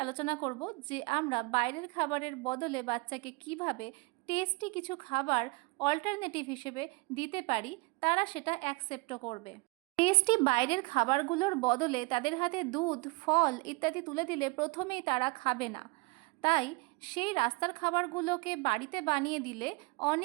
আলোচনা করব যে আমরা বাইরের খাবারের বদলে বাচ্চাকে কিভাবে টেস্টি কিছু খাবার অল্টারনেটিভ হিসেবে দিতে পারি, তারা সেটা অ্যাকসেপ্টও করবে। টেস্টি বাইরের খাবারগুলোর বদলে তাদের হাতে দুধ, ফল ইত্যাদি তুলে দিলে প্রথমেই তারা খাবে না। তাই সেই রাস্তার খাবারগুলোকে বাড়িতে বানিয়ে দিলে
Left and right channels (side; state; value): left; quieter; 26.7 dB